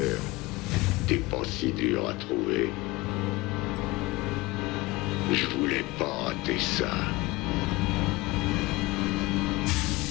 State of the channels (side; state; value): right; quieter; 21.6 dB